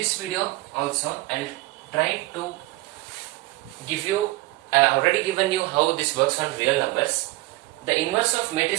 video also I'll try to give you, I have already given you how this works on real numbers. The inverse of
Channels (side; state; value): left; quieter; 20.3 dB